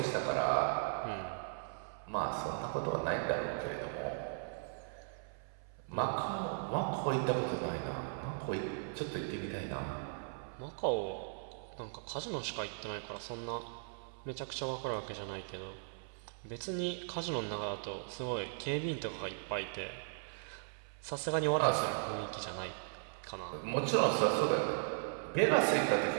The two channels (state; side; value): silent; left; 53 dB below the other